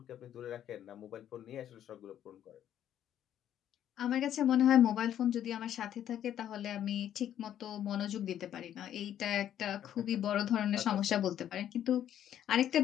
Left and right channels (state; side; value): quieter; right; 10.7 dB